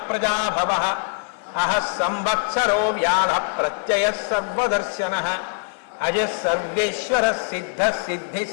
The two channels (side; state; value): right; silent; 56 dB below the other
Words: ప్రజాభవః అహ సంవత్సరో వ్యాధ ప్రత్యయ సర్వదర్శనః అజ సర్వేశ్వర సిద్ధ సిద్ధి